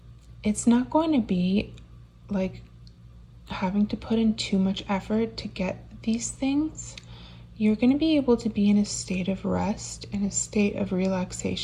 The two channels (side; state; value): both; identical; correlation 1.00